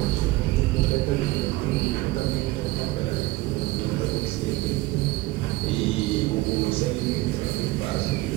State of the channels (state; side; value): quieter; left; 19.7 dB